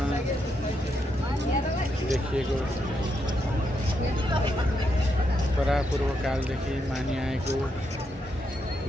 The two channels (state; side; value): normal; both; correlation 0.80